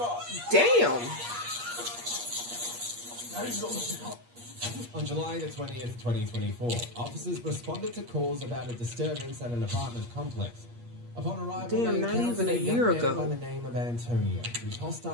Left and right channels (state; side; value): late; left; 8.4 ms